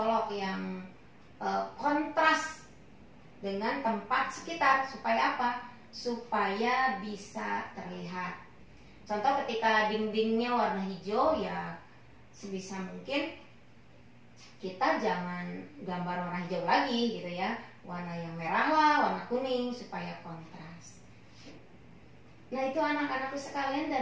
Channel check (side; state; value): both; identical; correlation 1.00